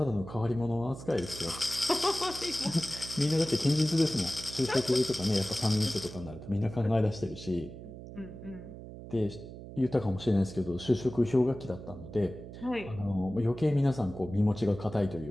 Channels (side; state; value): right; noise; hum, 13 dB below the sound